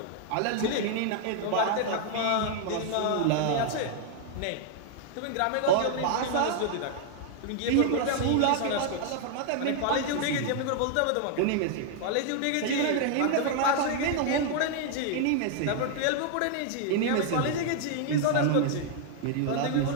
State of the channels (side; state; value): both; different; correlation 0.00